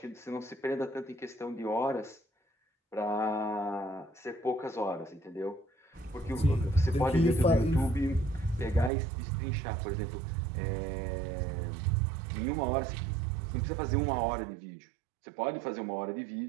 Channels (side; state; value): left; drops out; at 8.9 s